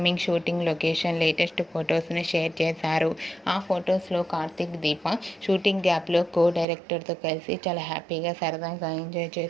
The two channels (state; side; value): drops out; left; at 6.7 s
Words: షూటింగ్ లొకేషన్ లేటెస్ట్ ఫొటోస్ని షేర్ చేశారు. ఆ ఫొటోస్లో కార్తీక్ దీప షూటింగ్ గ్యాప్లో డైరెక్టర్తో కలిసి చాలా హ్యాపీగా సరదాగా ఎంజాయ్